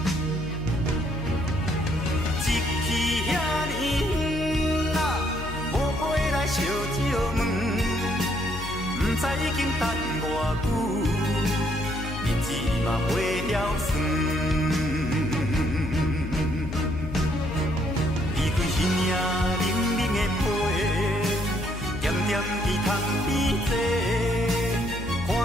一去遐尼远啊，无回来烧酒问，不知已经等偌久，日子嘛过了算。伊领冷冷的被，点点伫窗边坐，看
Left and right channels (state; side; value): noise; left; hum, 8 dB below the sound